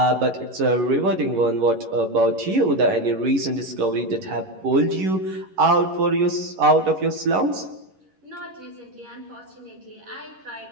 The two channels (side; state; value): left; late; 11 ms